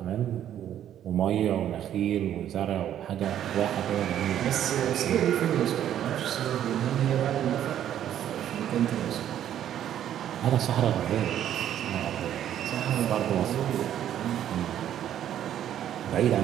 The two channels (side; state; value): left; quieter; 10.8 dB